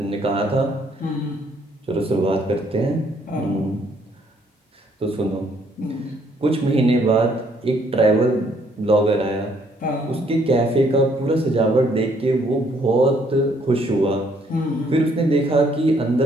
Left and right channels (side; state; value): both; normal; correlation 0.67